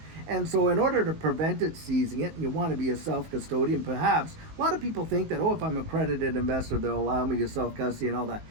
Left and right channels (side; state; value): left; late; 19 ms